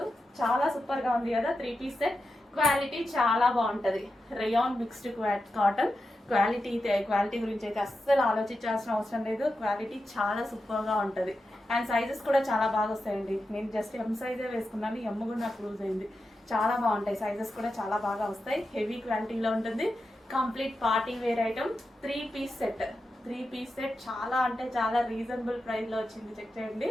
చాలా సూపర్ గా ఉంది కదా. 3 పీస్ సెట్ క్వాలిటీ చాలా బాగుంటది. రేయాన్ మిక్స్డ్ కాటన్ క్వాలిటీ గురించి అయితే అస్సలు ఆలోచించాల్సిన అవసరం లేదు. క్వాలిటీ చాలా సూపర్ గా ఉంటది అండ్ సైజెస్ కూడా చాలా బాగా వస్తాయండి. నేను జస్ట్ ఎం సైజే వేసుకున్నాను, ఎమ్ కూడా నాకు లూజ్ అయింది. చాలా బాగుంటాయి, సైజెస్ కూడా చాలా బాగా వస్తాయి. హెవీ క్వాలిటీలో ఉంటుంది. Complete party wear item 3 piece set చాలా అంటే చాలా రీజనబుల్ ప్రైస్ లో వచ్చింది. చెక్ చేయండి.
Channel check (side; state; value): both; normal; correlation 0.90